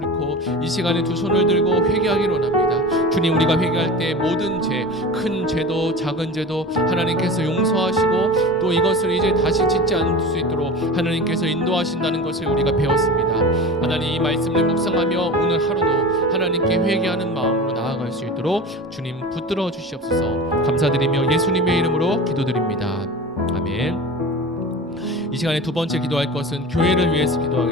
이 시간에 두 손을 들고 회개하기로 합니다. 주님, 우리가 회개할 때 모든 죄, 큰 죄도 작은 죄도 하나님께서 용서하시고 또 이것을 이제 다시 짓지 않을 수 있도록 하나님께서 인도하신다는 것을 우리가 배웠습니다. 하나님, 이 말씀을 묵상하며 오늘 하루도 하나님께 회개하는 마음으로 나아갈 수 있도록 주님 붙들어 주시옵소서. 감사드리며 예수님의 이름으로 기도드립니다. 아멘. 이 시간에 두 번째 기도할 것은 교회를 위해서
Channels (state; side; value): normal; both; correlation 0.33